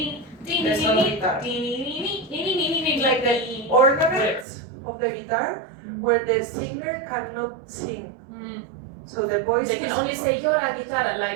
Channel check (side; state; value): left; drops out; at 4.5 s